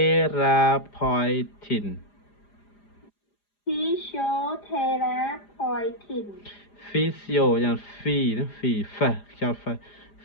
physio យ៉ាង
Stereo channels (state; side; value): late; right; 4.9 ms